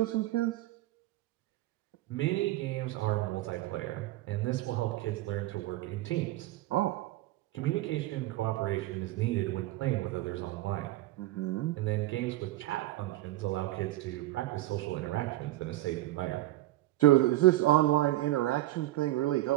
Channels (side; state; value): left; quieter; 16.6 dB